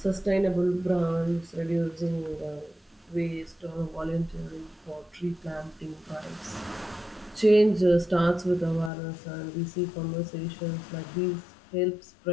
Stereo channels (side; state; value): right; drops out; at 8.9 s